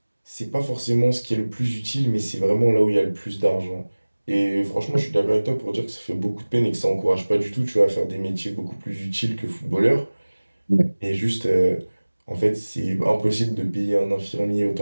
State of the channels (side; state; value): both; inverted; correlation -1.00